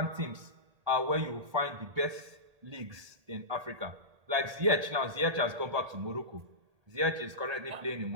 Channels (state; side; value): late; left; 1.8 ms